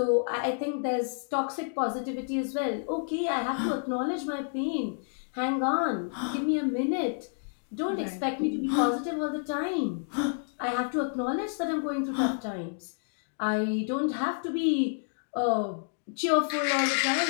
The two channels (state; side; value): silent; right; digital silence